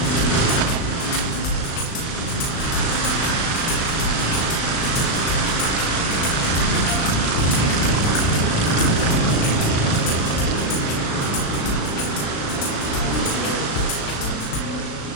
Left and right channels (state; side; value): late; right; 36 ms